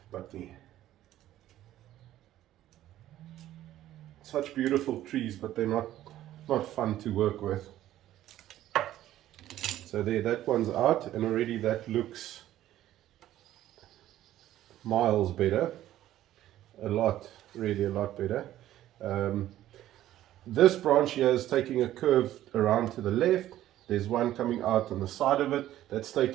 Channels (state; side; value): quieter; left; 13.3 dB